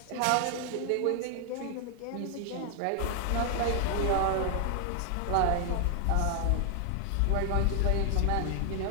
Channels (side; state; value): both; different; correlation 0.00